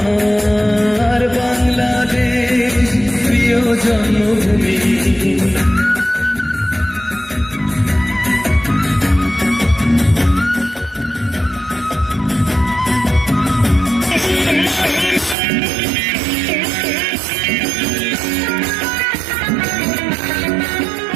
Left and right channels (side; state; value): left; drops out; at 15.4 s